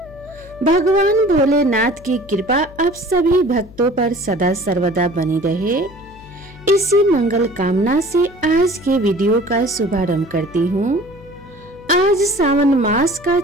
भगवान भोलेनाथ की कृपा आप सभी भक्तों पर सदा सर्वदा बनी रहे, इसी मंगल कामना से आज के वीडियो का शुभारंभ करती हूँ। आज सावन मास का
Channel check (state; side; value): noise; left; hum, 21 dB below the sound